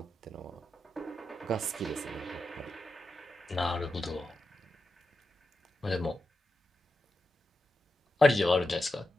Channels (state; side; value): normal; both; correlation 0.89